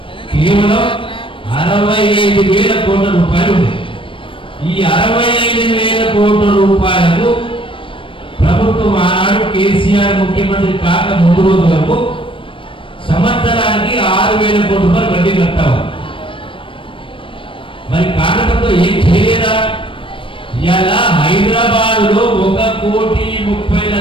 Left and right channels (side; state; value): right; late; 0.25 ms